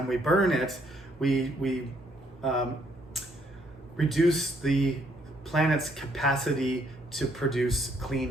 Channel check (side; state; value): both; normal; correlation 0.69